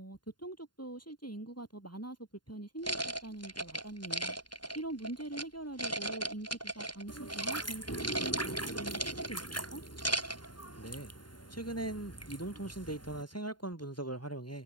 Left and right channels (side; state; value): right; late; 0.71 ms